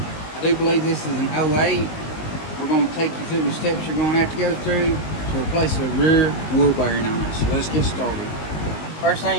I do believe this is an 08. We're going to take you through the steps you're going to have to go through to replace the rear wheel bearing on it. So let's get started. First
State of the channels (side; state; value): right; late; 19 ms